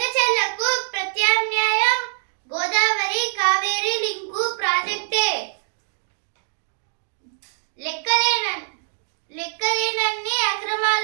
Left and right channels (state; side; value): silent; left; digital silence